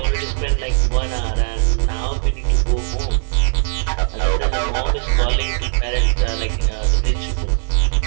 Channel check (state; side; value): silent; left; 67 dB below the other